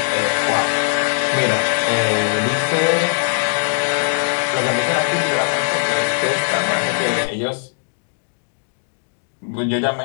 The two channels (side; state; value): right; silent; digital silence